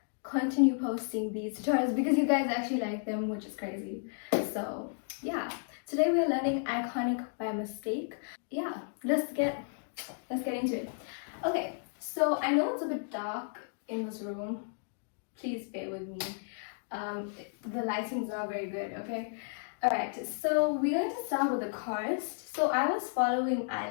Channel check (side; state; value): right; silent; digital silence